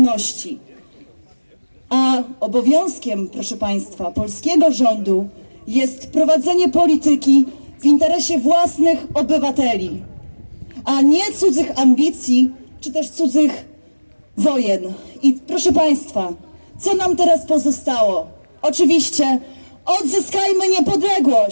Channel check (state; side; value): inverted; both; correlation -1.00